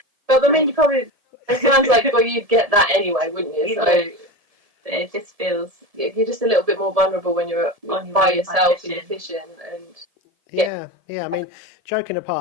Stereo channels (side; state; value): left; late; 1.7 ms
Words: But I mean, you probably. It sounds like, well, you'd get that anyway, wouldn't you? So it just feels you're just a little bit more vulnerable when you're by yourself and you're fishing. And yeah. I mean, joking